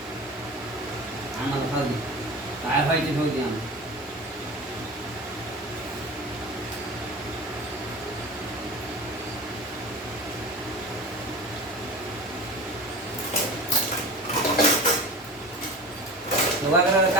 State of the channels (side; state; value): both; normal; correlation 0.34